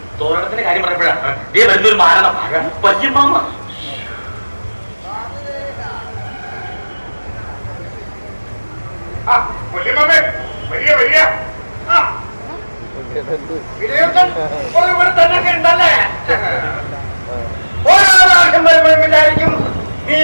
തോരണത്തിന്റെ കാര്യം പറയുമ്പോഴാണ് ഇതേ വരുന്നൊരു മാരണം വല്യമ്മാമ. ഇവിടെ തന്നെ ഉണ്ടല്ലേ? ഓരോ പ്രാവശ്യം വരുമ്പോഴും വിചാരിക്കും നീ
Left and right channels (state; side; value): inverted; both; correlation -1.00